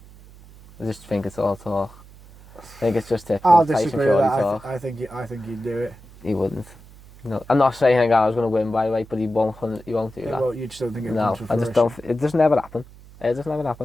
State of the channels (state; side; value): noise; right; hum, 21 dB below the sound